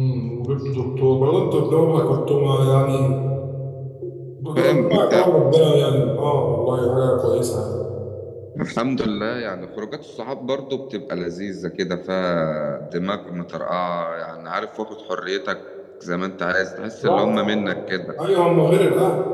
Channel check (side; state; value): both; identical; correlation 1.00